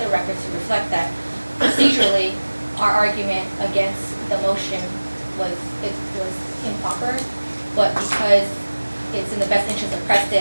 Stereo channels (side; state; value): both; inverted; correlation -1.00